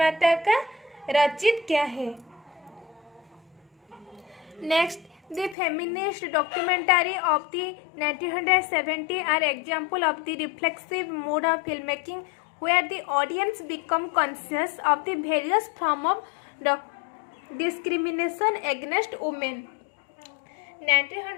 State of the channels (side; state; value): right; drops out; at 5.6 s